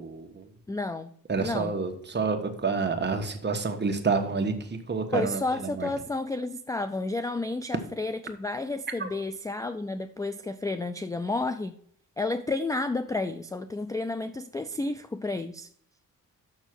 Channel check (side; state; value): both; normal; correlation 0.44